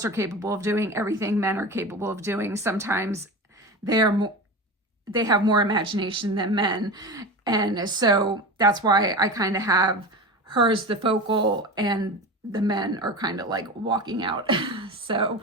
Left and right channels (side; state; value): both; normal; correlation 0.27